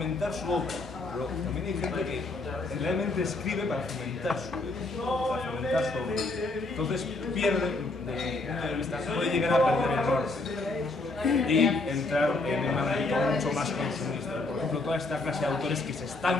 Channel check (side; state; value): right; quieter; 3.1 dB